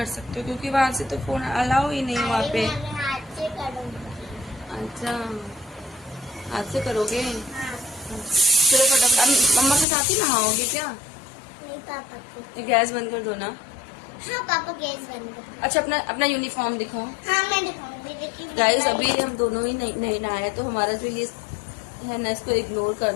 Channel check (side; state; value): right; drops out; at 9.9 s